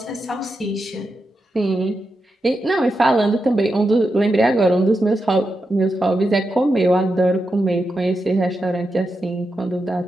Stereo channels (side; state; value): both; normal; correlation 0.87